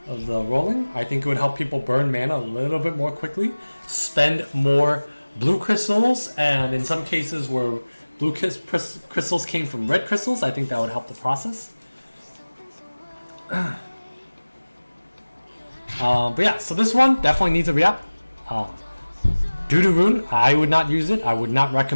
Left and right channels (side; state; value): both; inverted; correlation -1.00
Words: of the rolling. I think it would help people burn mana a little bit more quickly, spend more blue crystals, and in some cases where blue crystals came from red crystals, I think that would help the process. But yeah, so this one definitely needs a Reapp. Doo-doo rune, I would not use it. I would not